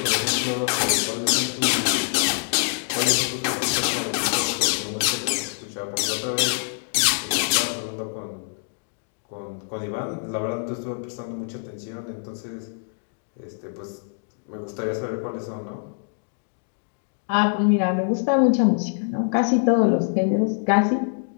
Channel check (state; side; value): silent; right; digital silence